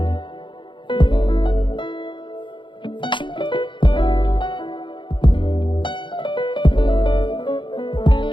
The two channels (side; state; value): right; late; 0.23 ms